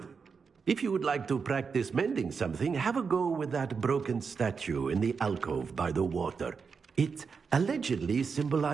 If you would like to practice mending something, have a go with that broken statue in the alcove by the water. It allegedly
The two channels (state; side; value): quieter; left; 5.5 dB